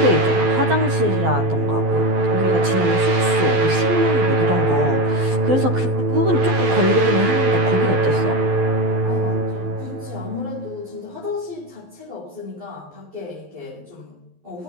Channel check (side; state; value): left; late; 12 ms